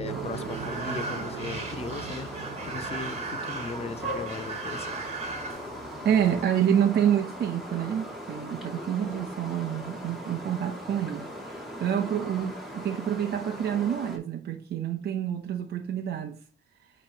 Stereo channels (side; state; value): left; quieter; 6.9 dB